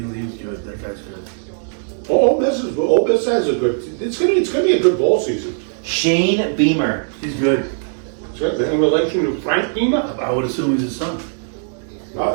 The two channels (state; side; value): silent; left; 65 dB below the other